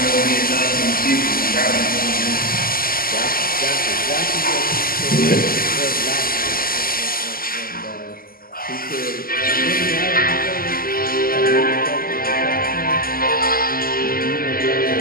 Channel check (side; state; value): right; late; 0.42 ms